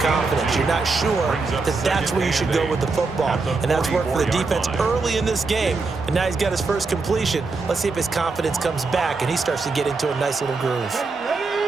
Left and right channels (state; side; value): quieter; left; 4.1 dB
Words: You're not sure that that's where you should go with the football, and that's worked for the defense early in this game. And now he's got his first completion. Let's see if his confidence comes back and he starts to get into a nice little groove.